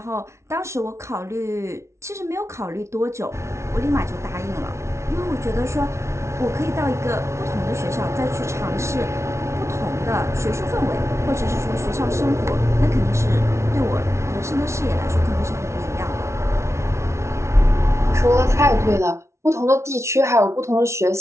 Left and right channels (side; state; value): left; late; 0.13 ms